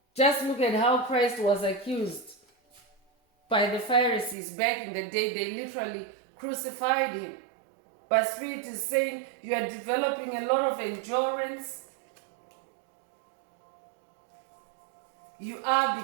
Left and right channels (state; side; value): drops out; left; at 4.4 s